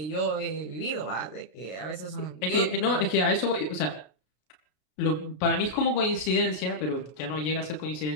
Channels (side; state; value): right; late; 33 ms